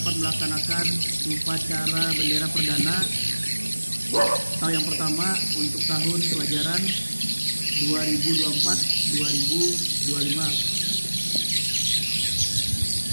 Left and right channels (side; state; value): both; inverted; correlation -1.00